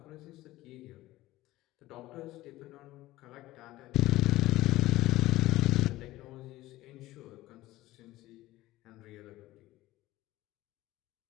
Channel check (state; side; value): quieter; right; 17.0 dB